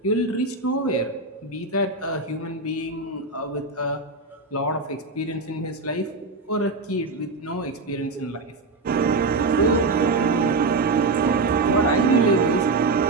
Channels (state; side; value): quieter; left; 3.6 dB